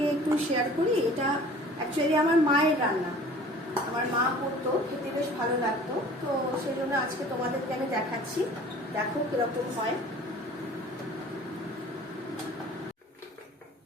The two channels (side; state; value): both; normal; correlation 0.47